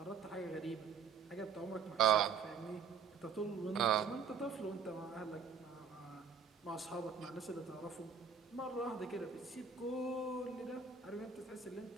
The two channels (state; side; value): quieter; left; 6.1 dB